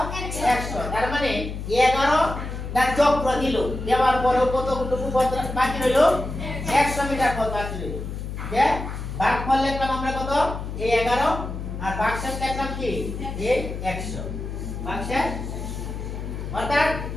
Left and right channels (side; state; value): left; noise; hum, 7 dB below the sound